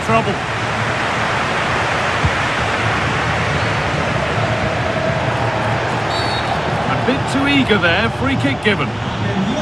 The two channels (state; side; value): noise; right; rumble, 23 dB below the sound